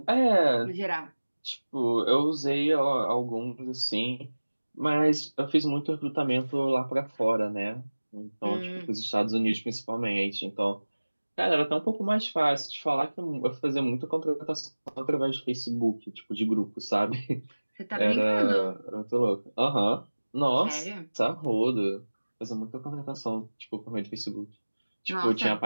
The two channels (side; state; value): both; inverted; correlation -1.00